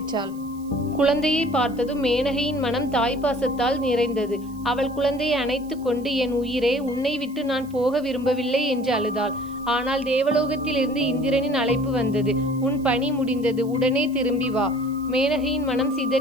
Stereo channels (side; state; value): right; noise; hiss, 25 dB below the sound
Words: குழந்தையை பார்த்ததும் மேனகையின் மனம் தாய்ப்பாசத்தால் நிறைந்தது. அவள் குழந்தையை அணைத்து கொண்டு, என் உயிரே, உன்னை விட்டு நான் போக விரும்பவில்லை என்று அழுதாள். ஆனால் தேவலோகத்திலிருந்து இந்திரனின் அழைப்பு வந்தது. உன் பணி முடிந்தது, உடனே திரும்பி வா. மேனகையின் மனம்